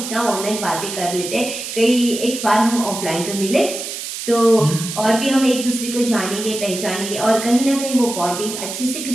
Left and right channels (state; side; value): noise; right; hiss, 7 dB below the sound